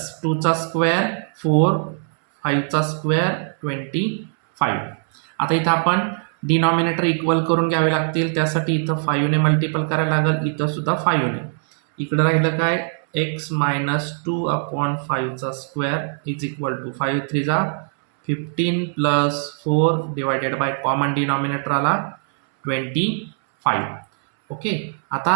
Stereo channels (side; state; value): left; silent; 65 dB below the other